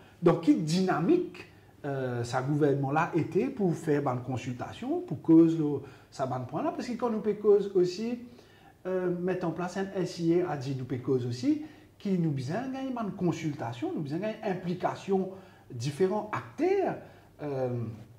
Donc, quelle dynamique ce gouvernement-là était pour faire une consultation, pour cause ça bon point-là, parce que quand nous peut cause aussi mettre en place un SIA a dit nous peut cause aussi qui nous besoin gagner une consultation, nous besoin gagner implication différents acteurs.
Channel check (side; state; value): both; identical; correlation 1.00